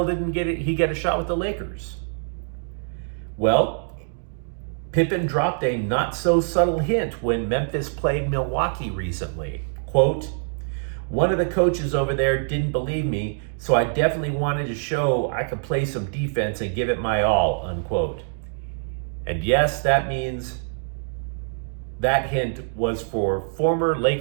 didn't he get a shot with the Lakers? Well, Pippen dropped a not-so-subtle hint when Memphis played Milwaukee recently. Quote, "One of the coaches over there didn't believe me, so I definitely wanted to show I could play some defense and give it my all," unquote. And yes, that means that hint was for former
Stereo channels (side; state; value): left; silent; 62 dB below the other